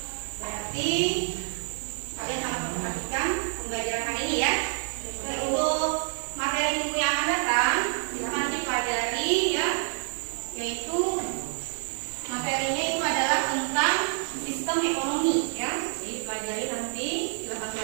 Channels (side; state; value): left; silent; 59 dB below the other